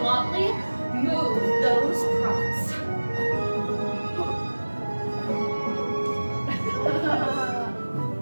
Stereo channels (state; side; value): inverted; both; correlation -1.00